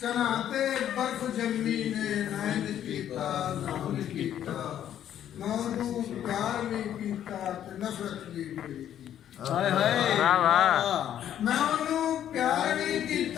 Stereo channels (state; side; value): quieter; right; 10.6 dB